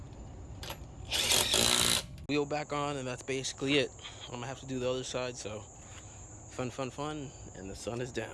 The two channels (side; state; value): both; identical; correlation 1.00